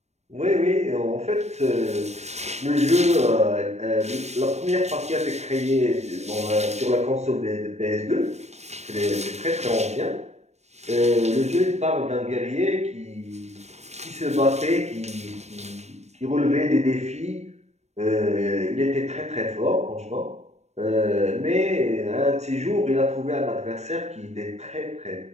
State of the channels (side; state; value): left; late; 0.32 ms